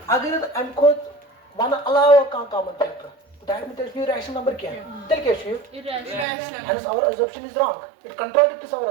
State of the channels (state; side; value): drops out; left; at 6.2 s